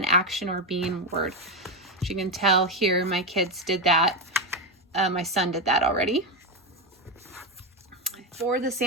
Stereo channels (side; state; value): both; normal; correlation 0.10